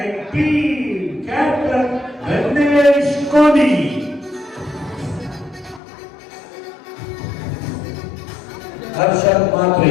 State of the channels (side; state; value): right; drops out; at 5.8 s